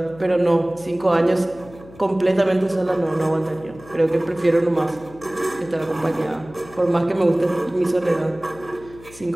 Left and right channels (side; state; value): left; noise; hum, 20 dB below the sound